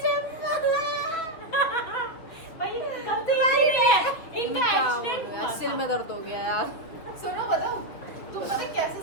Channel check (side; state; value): right; late; 6.3 ms